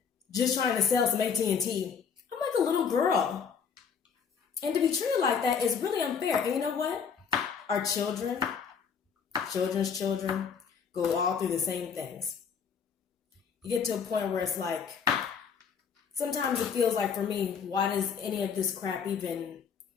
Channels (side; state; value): right; quieter; 6.5 dB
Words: just trying to sell some AT&T. I'm like a little girl. And to be treated like that is really unfair. And you know what? Our children's children, go all through the same things. You get to a point where it's like, sometimes it feels like for me, why does any of this crap even,